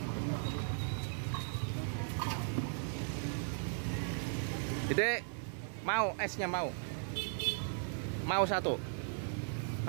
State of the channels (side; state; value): left; silent; 53 dB below the other